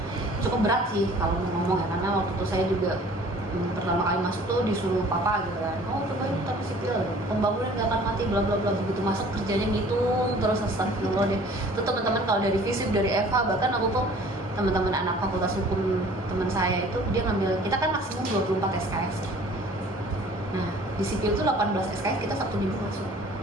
cukup berat sih kalau ngomong ya, karena waktu itu saya juga pertama kali masuk tuh disuruh papa gitu kan, oh coba ini teknik sipil, pembangunan gak akan mati bla bla bla, begitu masuk kerjanya ngitung terus astagfirullah deh. Itu teman-teman kalau dari FISIP, dari FH, bahkan aku tuh teman-teman anak fakultas hukum teman saya itu dia ngambil, kita kan maksimum 24 SKS. Nah di sipil tuh 18 SKS kita Sabtu Minggu masuk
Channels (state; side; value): normal; both; correlation 0.50